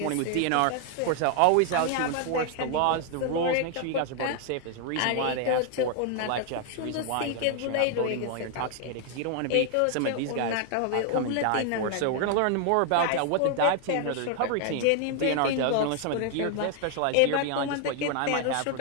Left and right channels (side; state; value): both; different; correlation 0.00